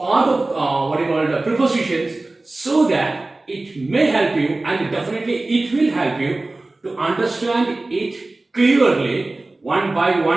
of prepositions so that it may help you, and definitely it will help you to understand it clearly one by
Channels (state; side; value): quieter; left; 3.0 dB